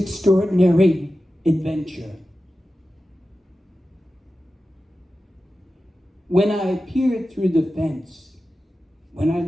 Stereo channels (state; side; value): normal; both; correlation 0.93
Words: adventure. When I peered through the fence, when I